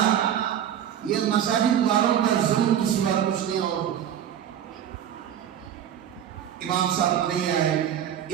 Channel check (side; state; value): left; quieter; 9.8 dB